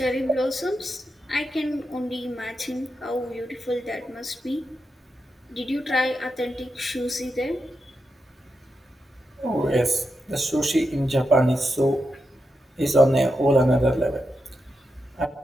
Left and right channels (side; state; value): both; normal; correlation 0.87